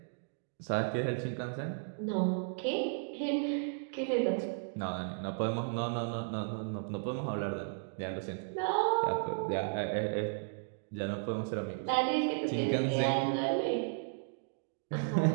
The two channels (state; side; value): silent; left; digital silence